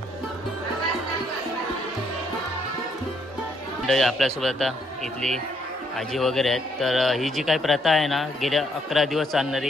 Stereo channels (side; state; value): both; normal; correlation 0.71